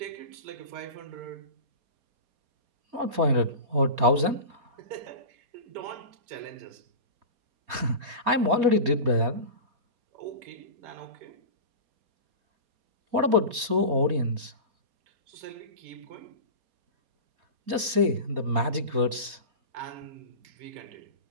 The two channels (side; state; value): left; late; 4.2 ms